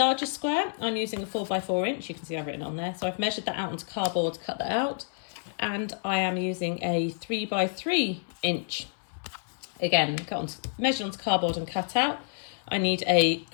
square. I'm using a 4x4 inch. You can see I've written on there. So I've measured that out onto cardboard to cut that out. And I am using a 3x3 inch. Again, measured onto cardboard and cut out. I need a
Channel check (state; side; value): silent; right; digital silence